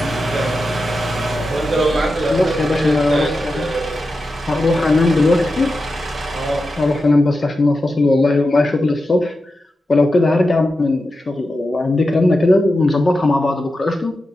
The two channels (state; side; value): normal; both; correlation 0.90